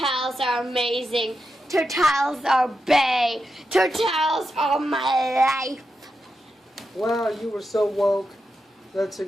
are amazing. Turtles are bae. Turtles are my life. Wow, you were so woke. That's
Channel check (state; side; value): normal; both; correlation 0.87